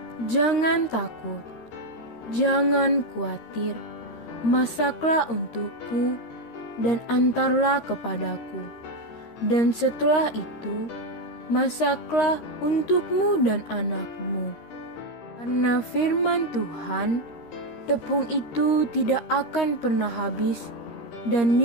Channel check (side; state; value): right; late; 13 ms